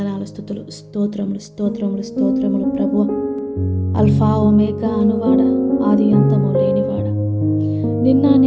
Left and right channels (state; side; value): identical; both; correlation 1.00